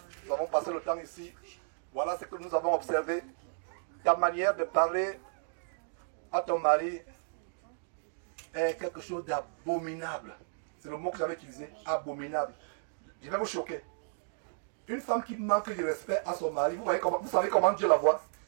Nous avons passé le temps ici. Voilà ce que nous avons observé. Ta manière de parler à ton mari est quelque chose d'abominable. C'est le mot que j'avais utilisé, abominable. Je vais vous choquer. Une femme qui manque de respect à son mari, vous savez comment Dieu la voit?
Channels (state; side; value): silent; left; digital silence